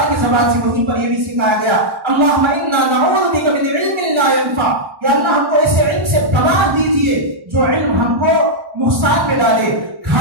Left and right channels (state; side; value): late; left; 1.1 ms